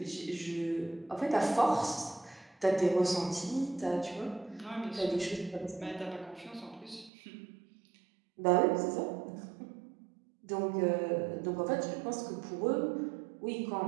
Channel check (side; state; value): left; drops out; at 7.1 s